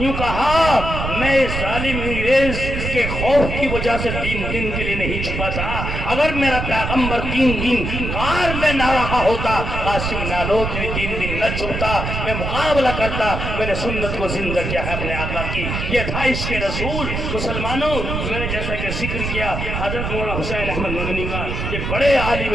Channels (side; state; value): right; noise; rumble, 3 dB below the sound